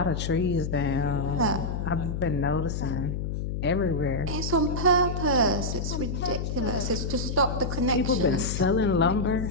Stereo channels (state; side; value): noise; left; hum, 3 dB below the sound